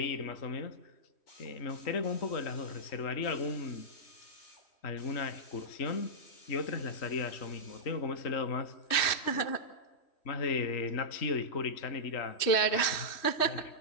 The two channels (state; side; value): late; right; 3.1 ms